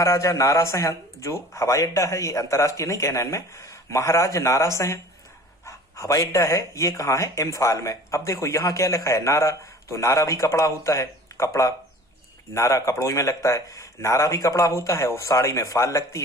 नारा सिंह जो हवाई अड्डा है, ये अंतर्राष्ट्रीय नहीं कहना इनमें, महाराज नारा सिंह हवाई अड्डा है, ये कहाँ है, इम्फाल में। अब देखो यहाँ क्या लिखा है, नारा। तो नारा भी कपड़ा होता है, कपड़ा, नारा कपड़ों में लगता है, नारा भी कपड़ा होता है, और साड़ी में फाल लगती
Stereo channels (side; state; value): both; normal; correlation 0.44